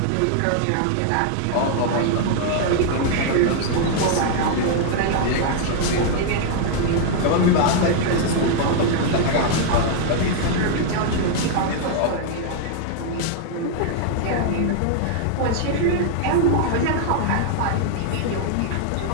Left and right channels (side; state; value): both; different; correlation -0.01